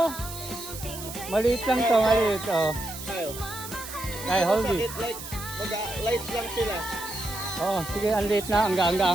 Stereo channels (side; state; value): right; noise; hiss, 11 dB below the sound